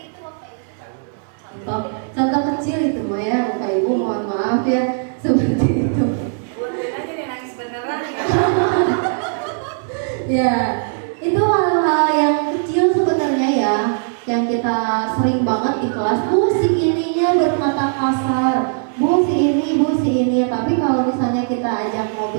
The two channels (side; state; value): left; silent; digital silence